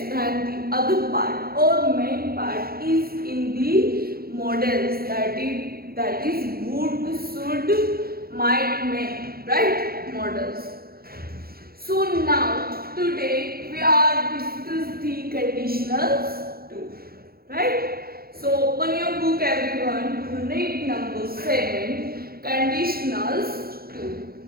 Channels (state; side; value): late; left; 0.44 ms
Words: then the other part or main part is in the models, that is would, should, might, may, right? Models. So now today we are discuss the conditionals too, right? So open your book everyone, unit number 7, conditionals 2.